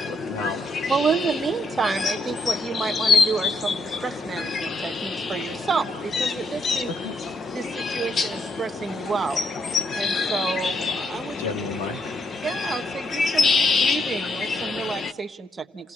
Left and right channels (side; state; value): both; normal; correlation 0.75